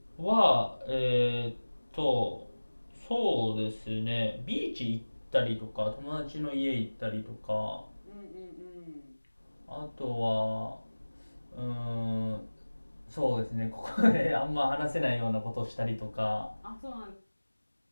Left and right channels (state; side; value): inverted; both; correlation -1.00